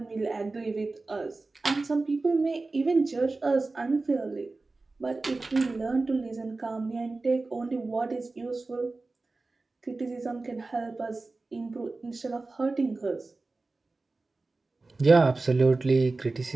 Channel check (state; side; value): quieter; left; 3.5 dB